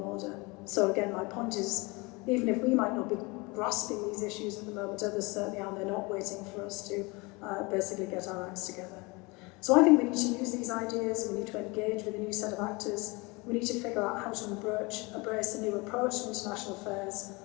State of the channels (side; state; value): right; quieter; 26.1 dB